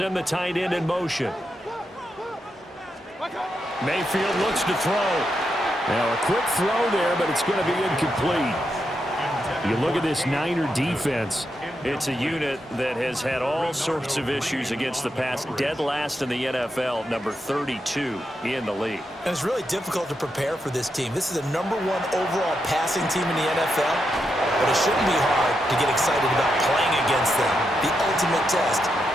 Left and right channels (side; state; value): both; normal; correlation 0.84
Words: the tight end in motion. Mayfield looks to throw. Now a quick throw there, but it's going to be incomplete. You look at this Niner defense. It's a unit that has had all sorts of issues against the pass. Dead last in the NFL, number 32 in the league. And it's really difficult to prepare for this team. This is the #1 overall passing team in the NFL, but it shouldn't be hard to get excited about playing against them. The ultimate test